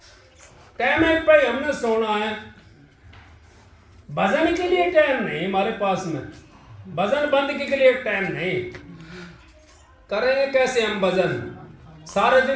टाइम पे हमने सोना है। भजन के लिए टाइम नहीं हमारे पास में, भजन बंद के लिए टाइम नहीं। करेंगे कैसे हम भजन? सारे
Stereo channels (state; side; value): identical; both; correlation 1.00